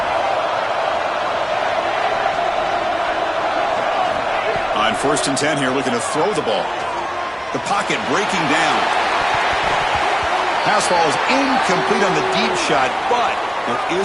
On 1st and 10 here, looking to throw the ball. The pocket breaking down. Pass ball is incomplete on the deep shot, but there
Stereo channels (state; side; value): identical; both; correlation 1.00